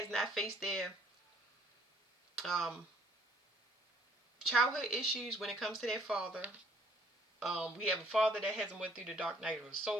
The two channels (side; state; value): both; normal; correlation 0.62